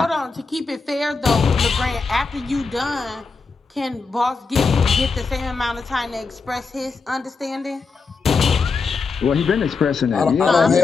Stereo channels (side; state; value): right; quieter; 4.6 dB